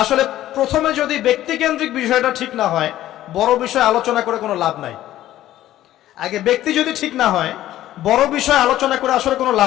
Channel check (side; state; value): right; quieter; 13.7 dB